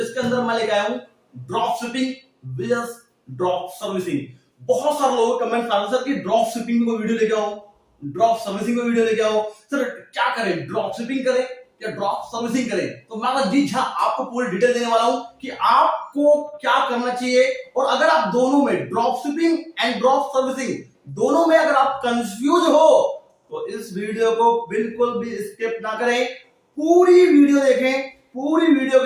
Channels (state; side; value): identical; both; correlation 1.00